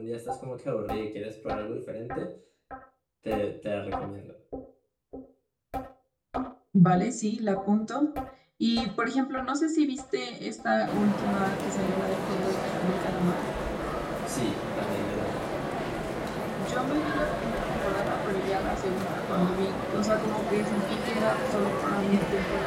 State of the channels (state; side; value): identical; both; correlation 1.00